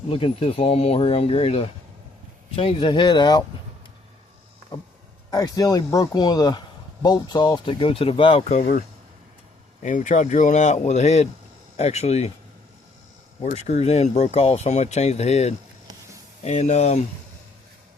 looking at this lawnmower here. I'm ready to change the head out. I accidentally broke one of the bolts off that go to the valve cover, and we tried drilling out with the head actually where it screws in broke off, so I'm going to change the head. And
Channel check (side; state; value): right; quieter; 3.3 dB